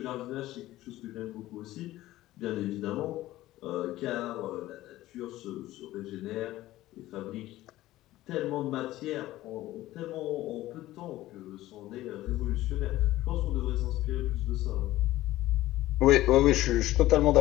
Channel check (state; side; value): quieter; right; 15.9 dB